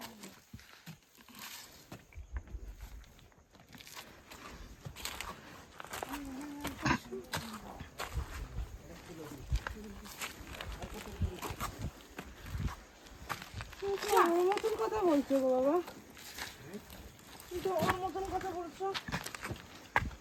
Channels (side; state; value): both; identical; correlation 1.00